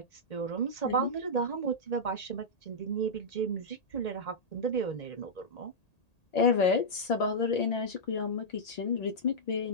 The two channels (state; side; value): late; right; 1.8 ms